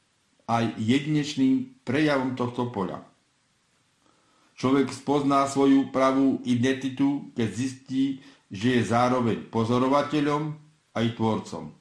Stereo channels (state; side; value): identical; both; correlation 1.00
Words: aj jedinečným prejavom tohto poľa. Človek spozná svoju pravú identitu, keď zistí, že je zároveň pozorovateľom aj tvorcom.